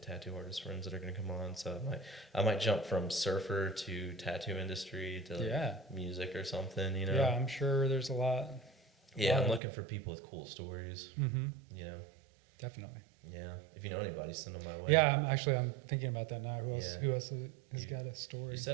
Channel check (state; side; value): drops out; left; at 9.6 s